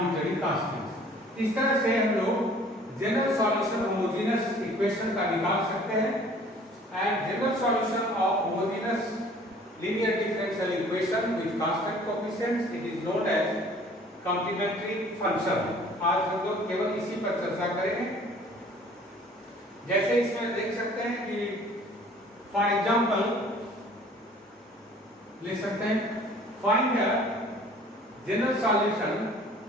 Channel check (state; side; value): normal; both; correlation 0.52